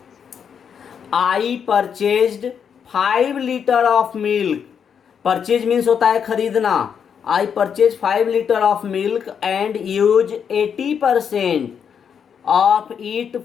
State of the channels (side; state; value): right; quieter; 7.4 dB